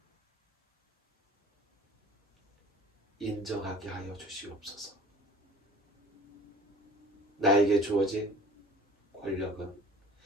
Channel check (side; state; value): both; normal; correlation 0.47